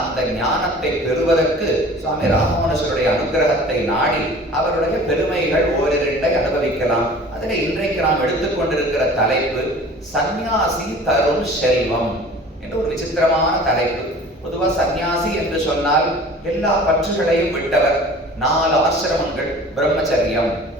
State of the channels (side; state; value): both; normal; correlation 0.44